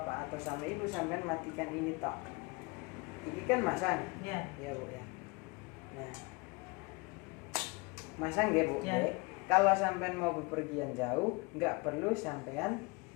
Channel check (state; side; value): quieter; right; 26.9 dB